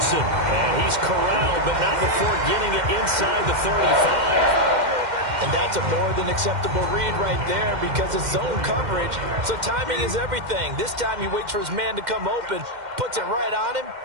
And he's corralled, but not before getting it inside the 35. And that's a more than acceptable read right there because it's zone coverage, so timing is everything. This time he waits for his man to come open, puts it right on him,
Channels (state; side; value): late; left; 2.1 ms